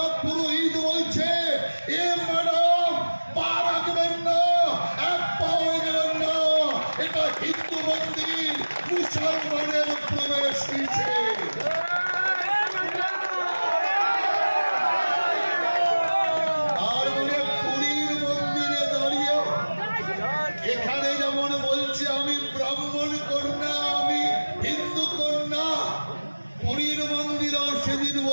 পুরোহিত বলছে, এ ম্যাডাম পা রাখবেন না, এক পাও এগোবেন না, এটা হিন্দু মন্দির, মুসলমানের প্রবেশ নিষেধ। আর বলে পুরীর মন্দিরে দাঁড়িয়ে এখানে যেমন বলছে আমি ব্রাহ্মণ কন্যা, আমি হিন্দু কন্যা, পুরীর মন্দিরেও সেদিন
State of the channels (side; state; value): both; inverted; correlation -1.00